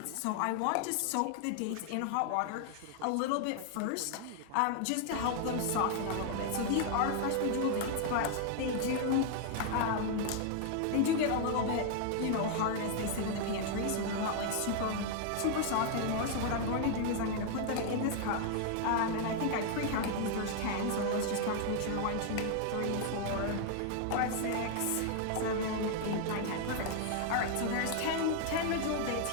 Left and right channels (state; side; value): different; both; correlation 0.00